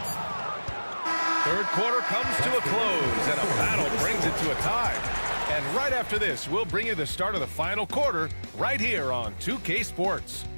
Third quarter comes to a close, and a battle brings it to a tie. And right after this, we'll bring you the start of the final quarter right here on 2K Sports.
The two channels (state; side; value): inverted; both; correlation -1.00